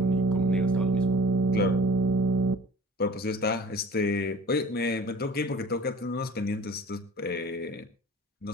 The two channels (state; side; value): normal; both; correlation 0.44